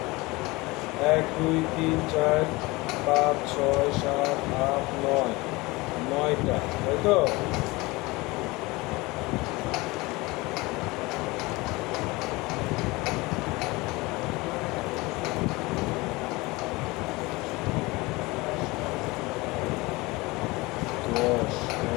1 2 3 4 5 6 7 8 9, 9টা, তাই তো?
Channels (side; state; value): right; quieter; 22.7 dB